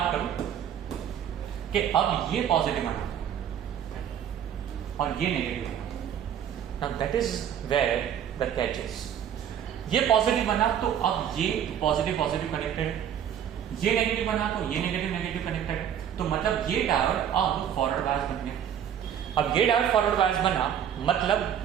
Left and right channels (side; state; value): left; quieter; 9.4 dB